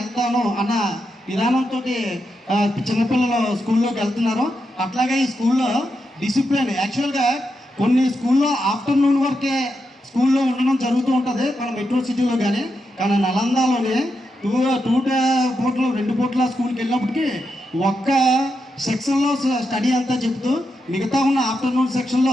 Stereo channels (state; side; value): normal; both; correlation 0.85